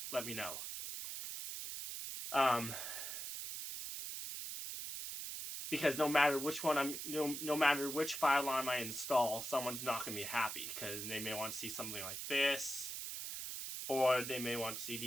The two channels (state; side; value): noise; right; hiss, 6 dB below the sound